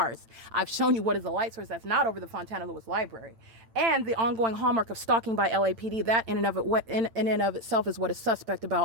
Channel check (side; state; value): left; late; 8.9 ms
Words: I've shown you what is the light source that's not over the Fontana Lewis Library. And the ongoing hallmark of stalking by LAPD, that in and of itself is what is suspect